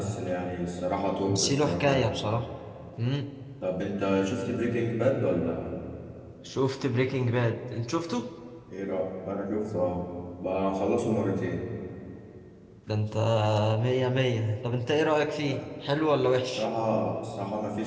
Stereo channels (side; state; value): both; identical; correlation 1.00